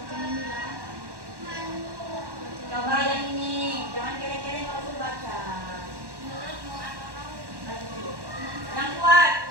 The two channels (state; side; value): late; left; 1.1 ms